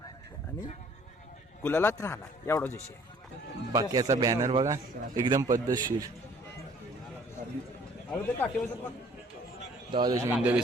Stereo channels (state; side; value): normal; both; correlation 0.57